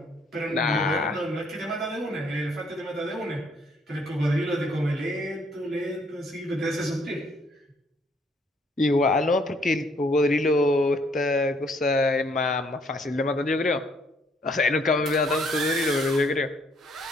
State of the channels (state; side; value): normal; both; correlation 0.66